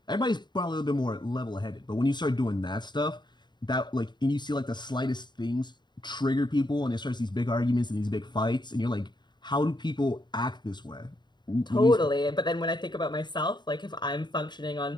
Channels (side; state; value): right; late; 0.21 ms